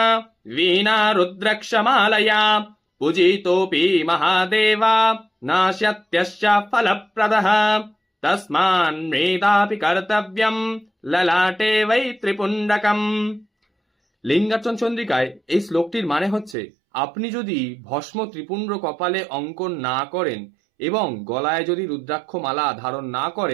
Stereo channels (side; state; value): left; drops out; at 16.6 s